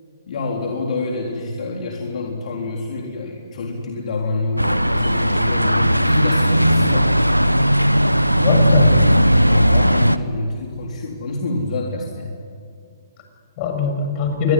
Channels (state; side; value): inverted; both; correlation -0.87